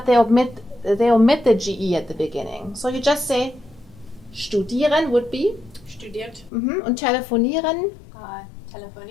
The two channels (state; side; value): drops out; right; at 6.5 s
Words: they omit the GE at the beginning. So you just say studieren would be Studiert. Und telefonieren.